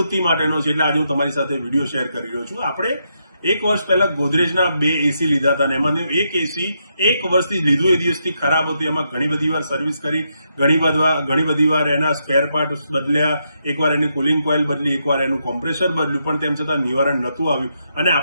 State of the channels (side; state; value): both; inverted; correlation -0.80